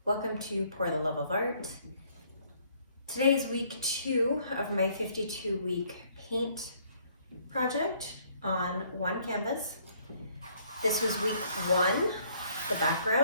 welcome to Pour the Love of Art. Today is week 2 of my 52-week paint project on one canvas. This was week 1, the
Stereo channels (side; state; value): both; inverted; correlation -0.64